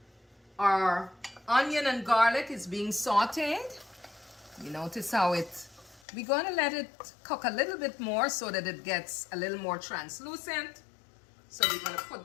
our onion and garlic is being sauteed. You notice how we're going to let it cook a little bit more so that it gets a little more translucent. So we're going to put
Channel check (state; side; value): drops out; right; at 6.0 s